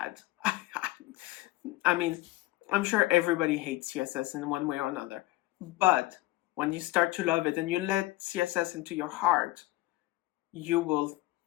I mean, I'm sure everybody hates CSS in one way or another. But when you start to love it and you let CSS into your heart, you will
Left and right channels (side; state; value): right; quieter; 18.6 dB